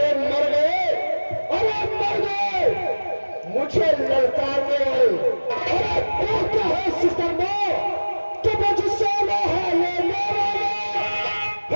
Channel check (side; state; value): both; inverted; correlation -1.00